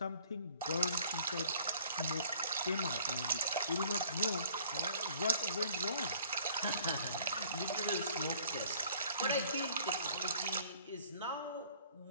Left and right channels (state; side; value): inverted; both; correlation -0.55